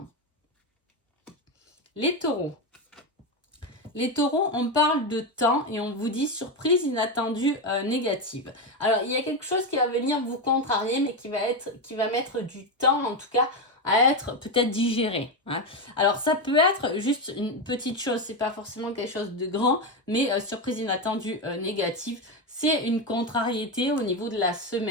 Les taureaux. Les taureaux, on parle de temps et on vous dit surprise inattendue négative. Alors, il y a quelque chose qui va venir vous contrarier, mais qui va mettre du temps, en tout cas, à être peut-être digéré, hein. Alors, ça peut être juste une petite chose, c'est pas forcément quelque chose de grand, mais surprise inattendue négative, c'est une contrariété au niveau de la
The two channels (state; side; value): normal; both; correlation 0.11